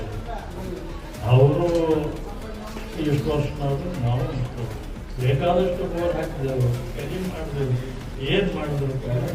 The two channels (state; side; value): identical; both; correlation 1.00